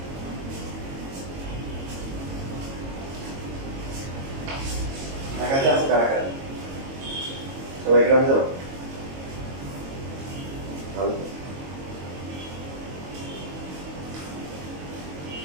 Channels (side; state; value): left; late; 22 ms